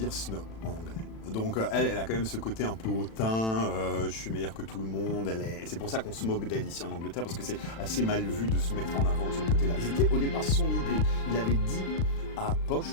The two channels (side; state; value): right; late; 36 ms